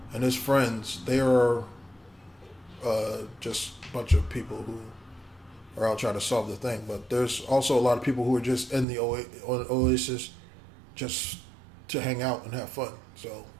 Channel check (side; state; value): left; drops out; at 8.8 s